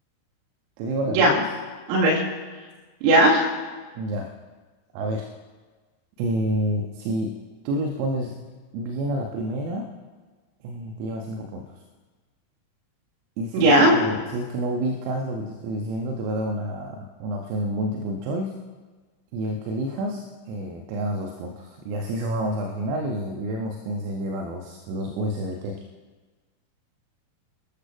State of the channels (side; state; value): left; late; 36 ms